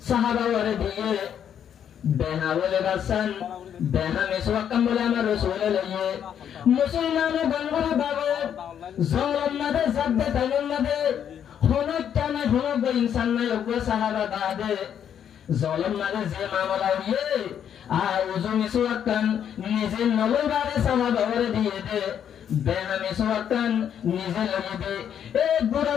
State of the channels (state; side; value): quieter; right; 9.0 dB